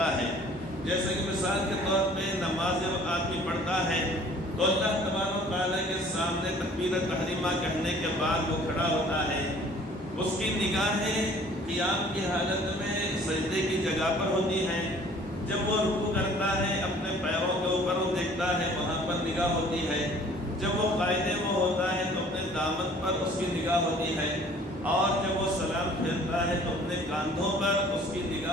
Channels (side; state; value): both; normal; correlation 0.53